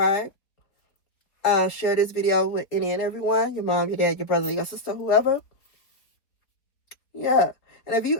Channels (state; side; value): late; right; 4.0 ms